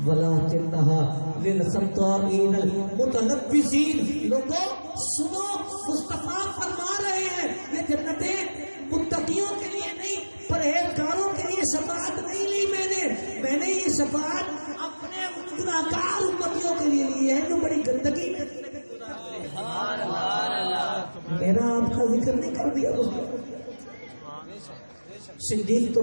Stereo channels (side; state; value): both; inverted; correlation -1.00